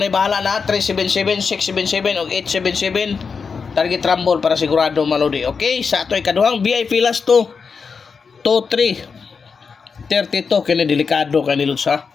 bahala na 377, 677 og 877. Target rumble para sigurado mga lodi. Okay, sa ato ikaduhang VIP last to 2-3 32 kini delikado kani lods ha.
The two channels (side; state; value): right; quieter; 5.4 dB